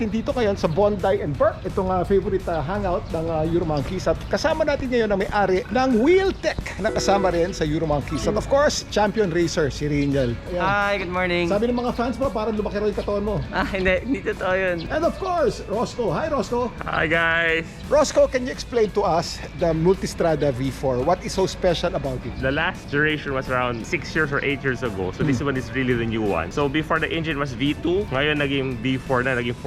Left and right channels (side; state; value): both; identical; correlation 1.00